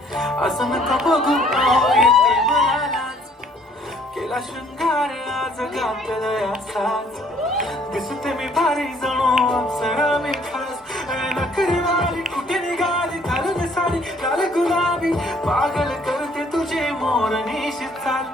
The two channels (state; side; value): normal; both; correlation 0.61